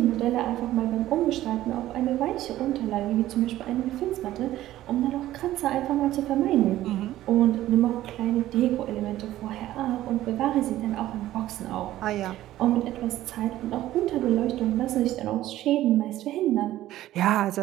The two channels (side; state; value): left; quieter; 14.4 dB